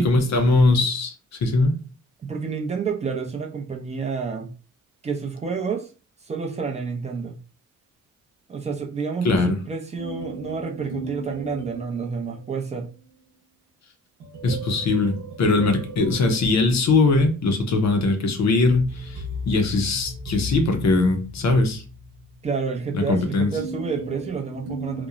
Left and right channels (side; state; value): both; normal; correlation 0.53